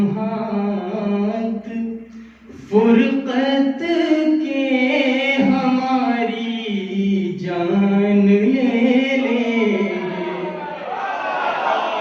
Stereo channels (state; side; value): identical; both; correlation 1.00